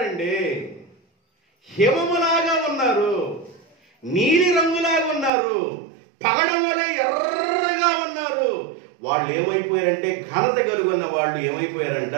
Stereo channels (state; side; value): drops out; left; at 5.3 s